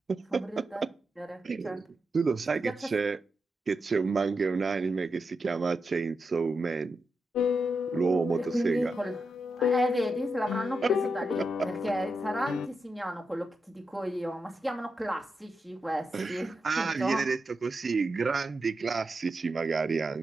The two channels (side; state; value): both; normal; correlation 0.87